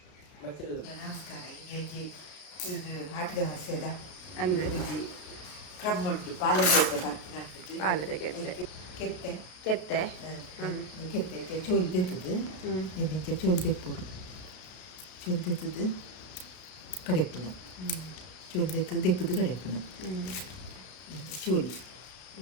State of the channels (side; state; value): right; late; 33 ms